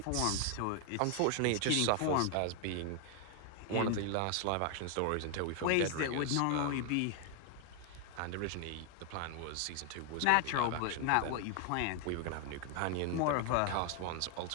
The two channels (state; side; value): different; both; correlation 0.00